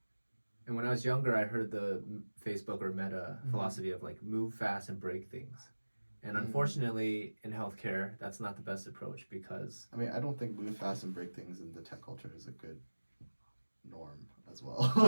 And when I was younger, I heard the Facebook or Meta philosophy of like move fast and break things. And unfortunately, in healthcare, that's not the best approach because I mean, I don't think move fast and break things in the tech culture is a good norm as well.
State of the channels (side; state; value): both; inverted; correlation -1.00